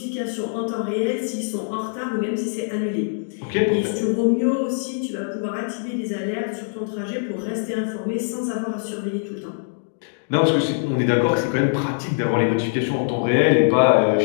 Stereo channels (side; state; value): right; silent; digital silence